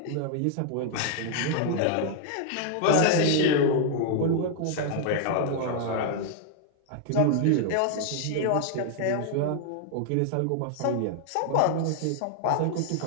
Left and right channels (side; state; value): both; different; correlation 0.00